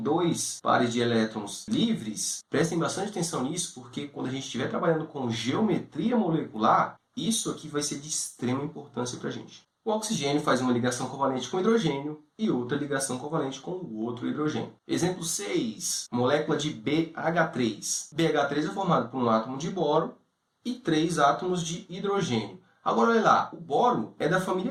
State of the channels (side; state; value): both; identical; correlation 1.00